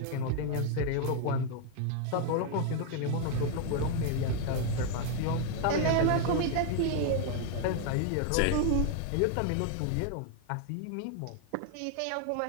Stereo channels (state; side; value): different; both; correlation 0.00